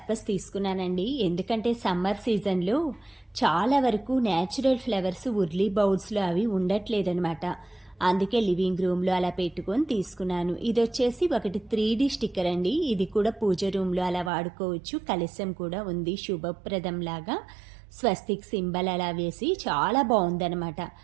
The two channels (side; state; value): left; drops out; at 14.3 s